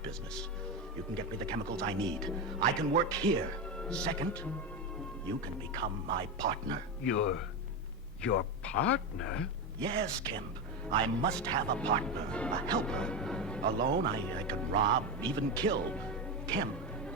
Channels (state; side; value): normal; both; correlation 0.15